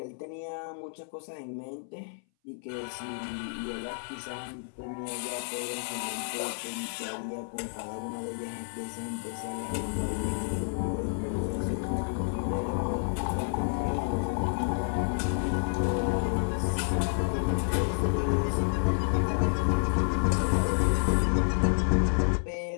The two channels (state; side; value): silent; right; 58 dB below the other